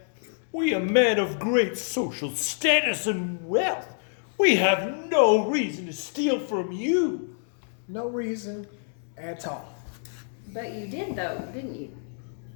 We are men of great social status and wealth. We have no reason to steal from you. No reason at all. But you did, though, didn't you?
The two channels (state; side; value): silent; right; digital silence